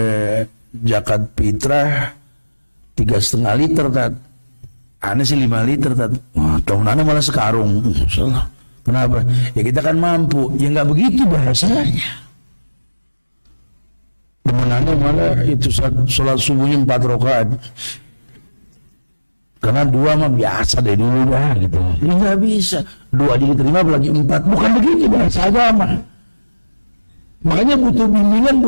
zakat fitrah 3,5 liter tat. Aneh sih 5 liter tat. Wah, tahun aneh malah sekarung. Salah. Kenapa? Ya kita kan mampu. Ya nggak begitu bahasanya. Temenannya malah itu sholat subuhnya 4 rakaat. Karena 2 mah biasa deh dulu dah gitu. Ini nggak bisa. 2 aja diterima apalagi 4. Bukan begitu bahasa agama. Makanya butuh bimbingan,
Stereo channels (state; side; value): inverted; both; correlation -1.00